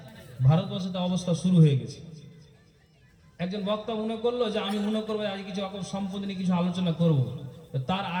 ভারতবর্ষে তো অবস্থা শুরু হয়ে গেছে। একজন বক্তা মনে করলো যে আমি মনে করবো আজ কিছু সম্পত্তি নিয়ে কিছু আলোচনা করব। তার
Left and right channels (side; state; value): both; identical; correlation 1.00